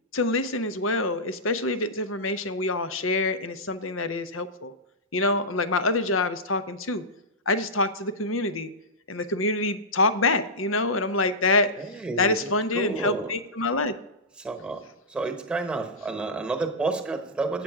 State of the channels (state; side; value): normal; both; correlation -0.11